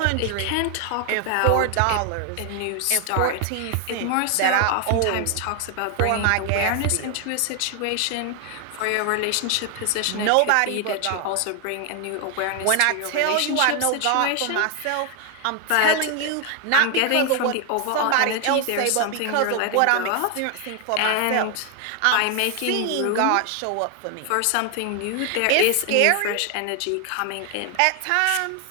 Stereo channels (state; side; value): different; both; correlation 0.00